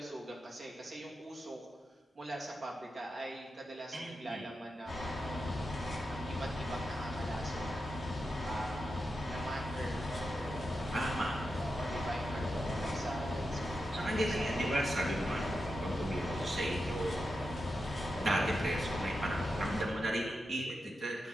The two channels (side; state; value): both; normal; correlation 0.88